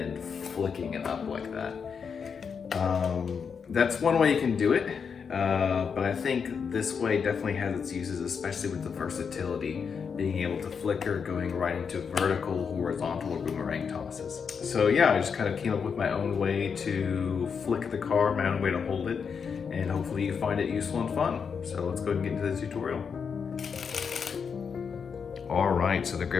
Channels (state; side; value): quieter; right; 6.3 dB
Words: flicking it up like that. That's one way you can do it, but I think this way definitely has its uses, especially with the versatility, being able to flicker, going right into vertical, horizontal, or boomerang tosses. So yeah, I just kind of came up with my own way to flick the card, my own way to hold it, and hopefully you find it useful and fun. So let's go ahead and get into the tutorial. All right, so the